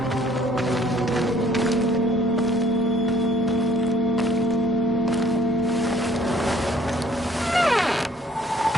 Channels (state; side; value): normal; both; correlation 0.61